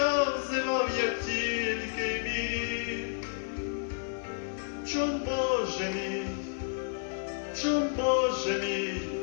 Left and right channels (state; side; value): silent; right; digital silence